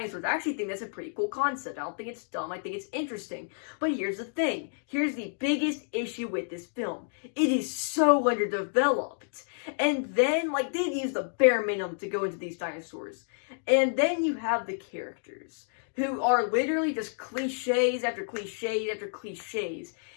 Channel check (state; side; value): silent; right; digital silence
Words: I actually think that's a pretty cool concept. I don't think it's dumb, I think it's interesting. But here's the thing. Here's the biggest issue with this film. It is so underdeveloped. And then, like, they've used the bare minimum to go into these dinosaurs. And then you have the characters, who are literally just cliches after cliches after cliches.